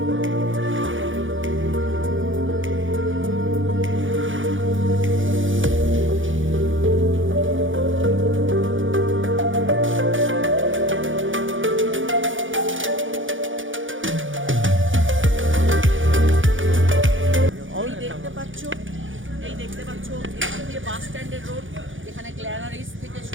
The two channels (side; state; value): left; late; 0.57 ms